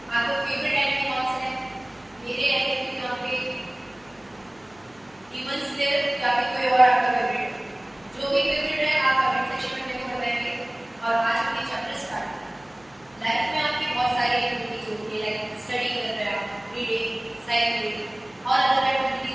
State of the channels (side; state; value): left; noise; hum, 30 dB below the sound